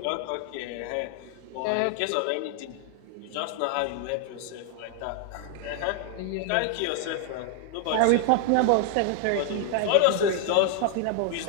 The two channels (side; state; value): both; different; correlation 0.00